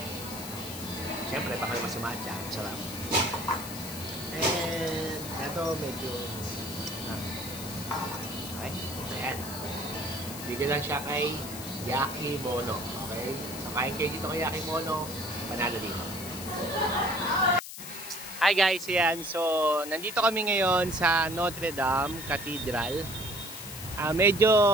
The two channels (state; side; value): noise; left; hiss, 10 dB below the sound